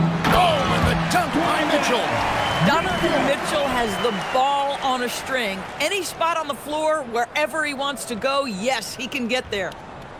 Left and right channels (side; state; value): both; identical; correlation 1.00